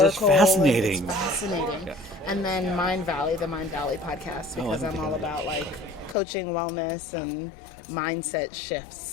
It's fascinating. It's fascinating. Yeah. And then Mind Valley, the Mind Valley podcast, because I'm all about like coaching, wellness, and mindset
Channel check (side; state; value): right; drops out; at 6.2 s